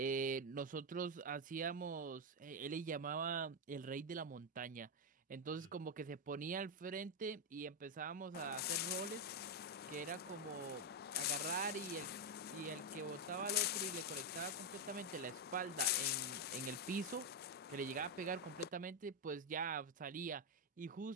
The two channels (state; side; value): normal; both; correlation 0.04